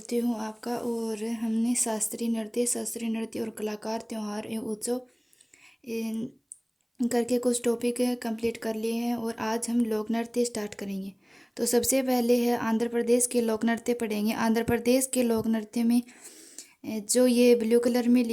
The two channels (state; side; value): identical; both; correlation 1.00